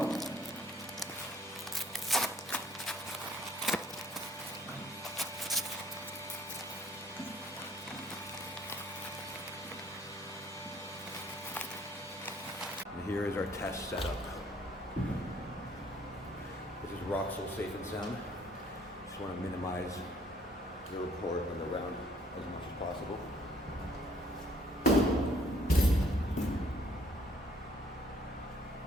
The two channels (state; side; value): normal; both; correlation 0.61